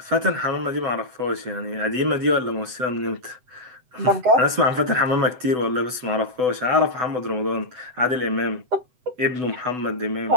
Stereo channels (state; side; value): late; left; 8.0 ms